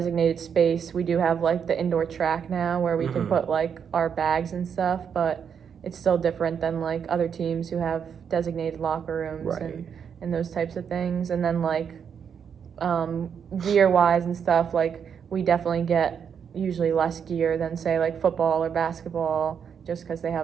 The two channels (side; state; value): left; quieter; 7.4 dB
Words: space. We do have like the indoor track now where we can put like our bags and stuff, but it's still different than like other teams who have designated locker rooms and those types of things. And then like gear wise and stuff, like we definitely get usually less gear than say like football or basketball, just because they